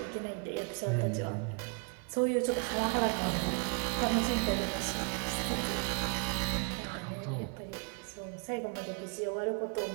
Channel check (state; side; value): quieter; left; 38.0 dB